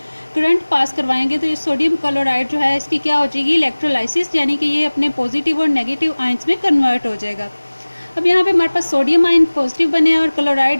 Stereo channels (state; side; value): inverted; both; correlation -1.00